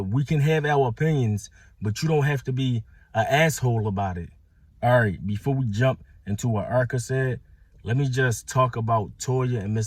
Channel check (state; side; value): identical; both; correlation 1.00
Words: we can have our opinions, but you don't have to be an asshole about it. All right, before we jump into what Erica said, let me just talk about Toya and